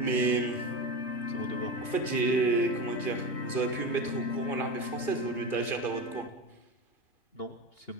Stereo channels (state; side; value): late; right; 2.3 ms